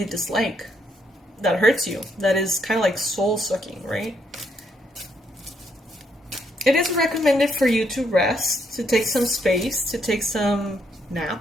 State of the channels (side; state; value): both; normal; correlation 0.75